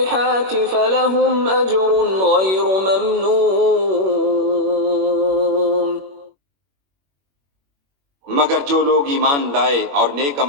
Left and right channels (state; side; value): late; left; 21 ms